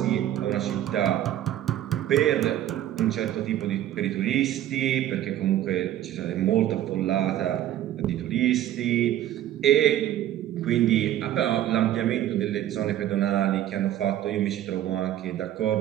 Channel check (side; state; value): left; quieter; 12.4 dB